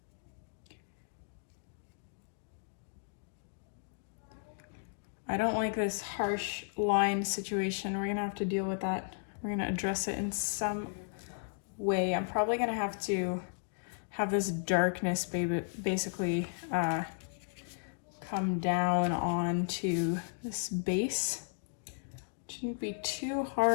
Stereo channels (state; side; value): silent; right; digital silence